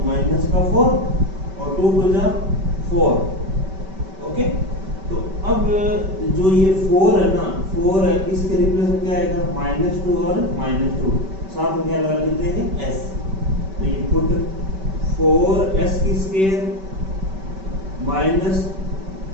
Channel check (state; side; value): late; left; 5.2 ms